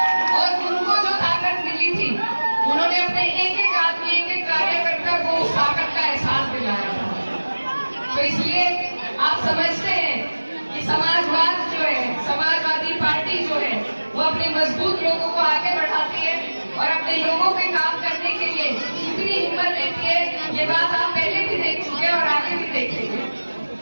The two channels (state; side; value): inverted; both; correlation -1.00